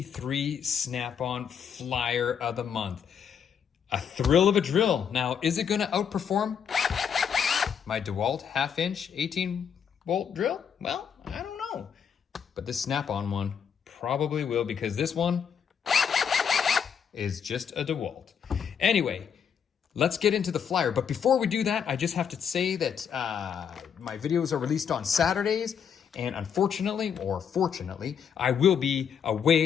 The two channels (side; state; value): right; quieter; 7.6 dB